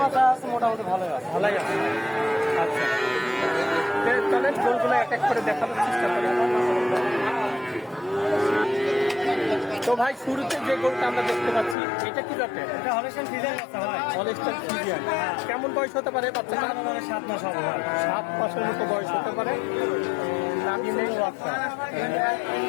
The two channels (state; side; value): drops out; right; at 11.8 s